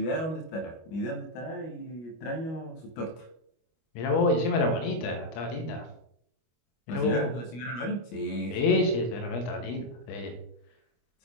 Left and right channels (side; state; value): right; late; 25 ms